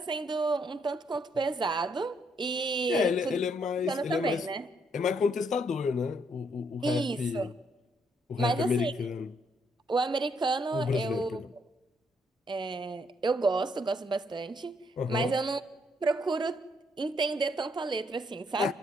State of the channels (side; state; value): both; normal; correlation 0.72